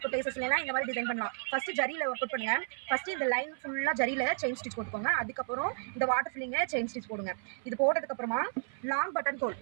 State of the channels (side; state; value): left; silent; 56 dB below the other